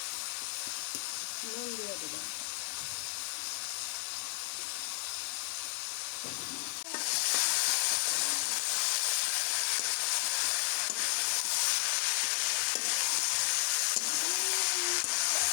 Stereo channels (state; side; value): silent; right; 56 dB below the other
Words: নুন দিয়ে দেবো।